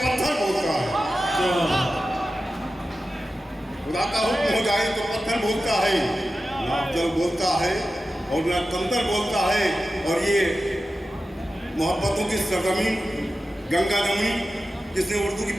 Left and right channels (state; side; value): normal; both; correlation 0.93